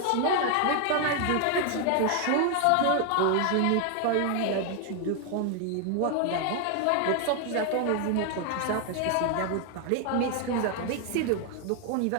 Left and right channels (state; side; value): different; both; correlation 0.00